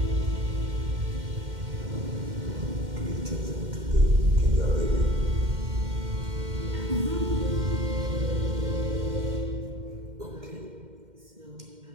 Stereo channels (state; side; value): late; left; 2.1 ms